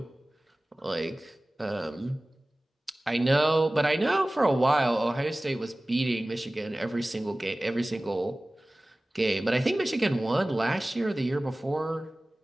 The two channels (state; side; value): normal; both; correlation 0.98